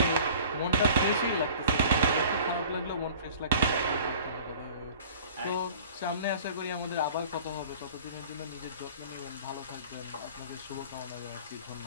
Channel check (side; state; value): both; inverted; correlation -0.46